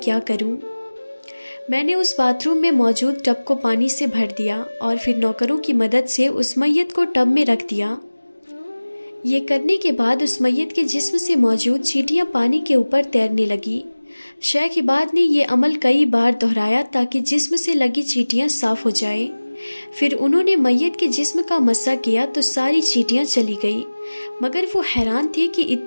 क्या करूं। मैंने उस बाथरूम में मौजूद टब को पानी से भर दिया और फिर नौकरों की मदद से उस मैयत को टब में रख दिया। ये करने के बाद उस मैयत के जिस्म से मौजूद चींटियां पानी के ऊपर तैरने लगी। शेख इबाद ने यह अमल कई बार दोहराया ताकि जिस्म से लगी चींटियां साफ हो जाए। फिर उन्होंने मैयत के जिस्म का मस्सा किया तो सारी चींटियां चली गई, मगर वो हैरान थे कि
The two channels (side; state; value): both; inverted; correlation -1.00